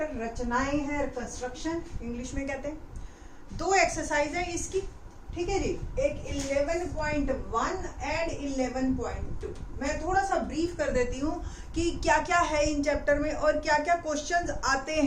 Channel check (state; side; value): identical; both; correlation 1.00